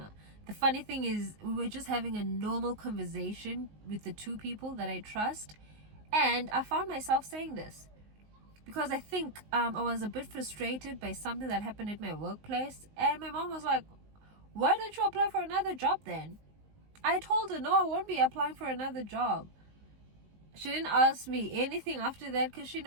The funny thing is, we were just having a normal conversation with the two people that I trust, and I found myself saying this because I think I was a bit frustrated by something that happened at my workplace, and my mom was like, why don't you apply for another job then? I told her, no, I won't be applying for another job. She didn't ask me anything after that because she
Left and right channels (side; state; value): left; late; 19 ms